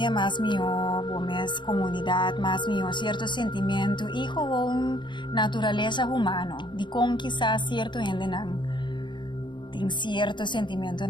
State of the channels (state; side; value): late; right; 0.23 ms